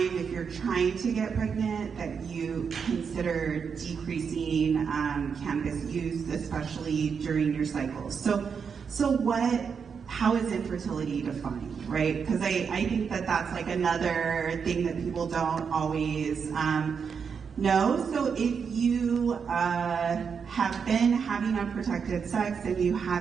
if you're trying to get pregnant, that you consider decreasing cannabis use, especially during your cycles. So how is infertility defined, right? Because I think that's like another thing that people don't always know. So if you have been having unprotected sex and you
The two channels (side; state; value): left; quieter; 6.3 dB